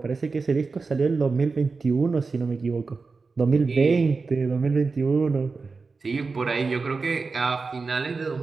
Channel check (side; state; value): left; quieter; 4.3 dB